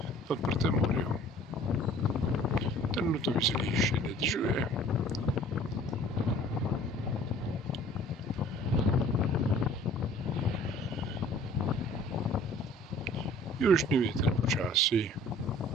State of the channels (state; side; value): normal; both; correlation 0.51